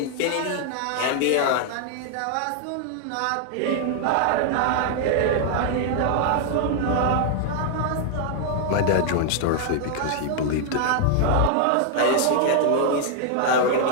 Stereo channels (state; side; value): different; both; correlation 0.00